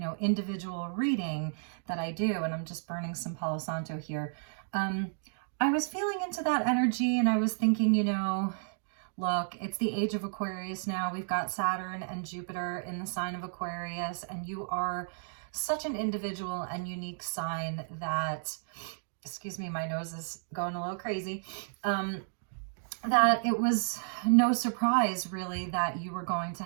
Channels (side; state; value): left; silent; digital silence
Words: individual reading that I do, and I'm just burning some Palo Santo here. I was feeling into that energy and I was thinking, look, it's the age of Aquarius now. We've got Saturn and Jupiter in the sign of Aquarius, and you are such an individual and unique sign that, excuse me, my nose is going a little crazy, that it was no surprise really that you were going to